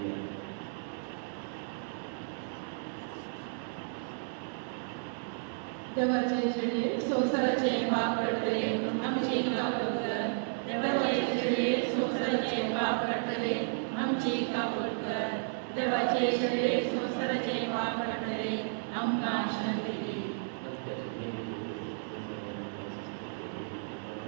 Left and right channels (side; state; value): left; silent; digital silence